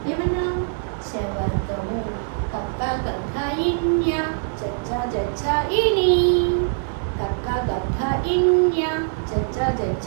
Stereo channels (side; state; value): left; silent; digital silence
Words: ఏమన్నా? చవర్గము. కక్క గక్క ఇన్య చచ్చ జచ్చ ఇని కక్క గక్క ఇన్య చచ్చ